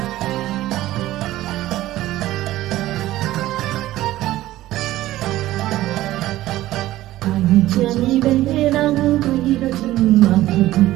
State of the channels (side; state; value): left; quieter; 15.5 dB